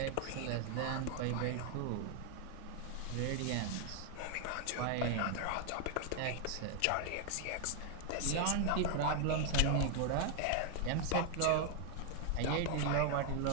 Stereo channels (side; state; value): both; different; correlation 0.00